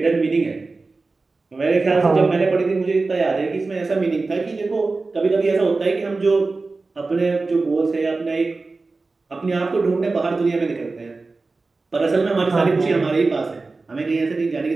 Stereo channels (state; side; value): quieter; left; 3.7 dB